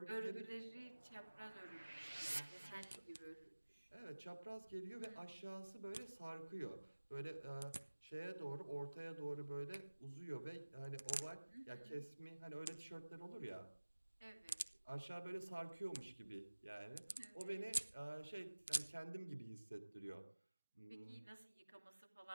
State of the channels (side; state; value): both; inverted; correlation -1.00